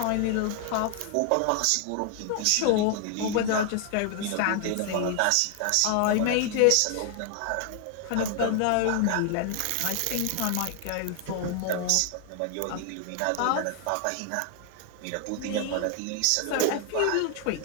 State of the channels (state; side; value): different; both; correlation 0.00